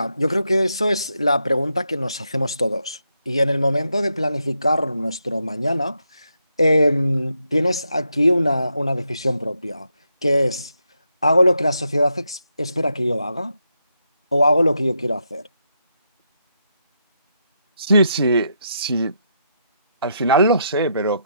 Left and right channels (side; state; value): both; inverted; correlation -0.81